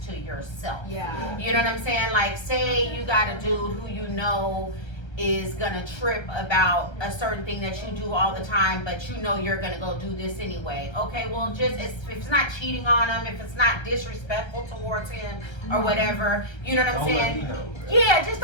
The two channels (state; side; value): late; right; 1.3 ms